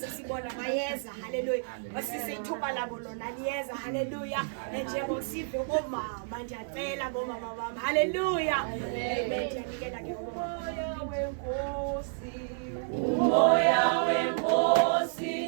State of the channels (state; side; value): silent; left; digital silence